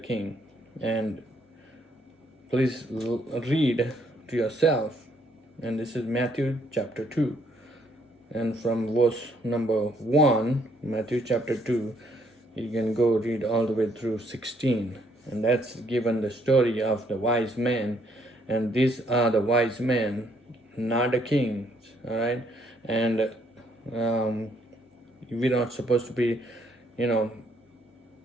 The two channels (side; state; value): both; normal; correlation 0.69